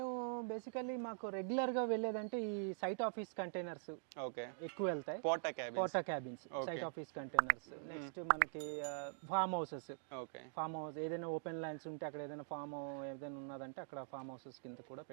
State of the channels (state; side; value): silent; left; digital silence